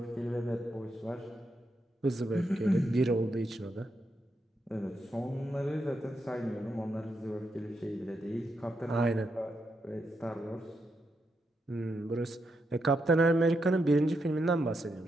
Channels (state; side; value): normal; both; correlation 0.83